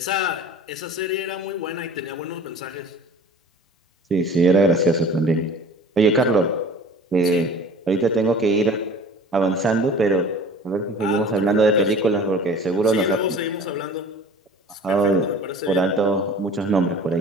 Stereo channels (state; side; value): normal; both; correlation 0.43